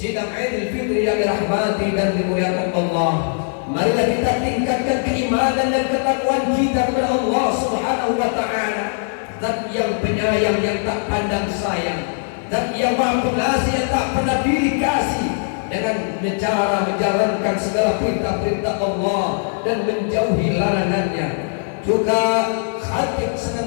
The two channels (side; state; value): right; silent; 57 dB below the other